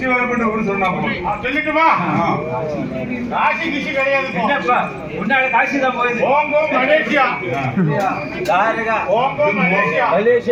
வரப்பட்ட ஊர் சொன்னா சொல்லிட்டுமா? காசி கிசி கிடையாது. முன்னாடி காசி தான் போயிடுது. ஓங்கோ மலேசியா. ஓங்கோ மலேசியா.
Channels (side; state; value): both; identical; correlation 1.00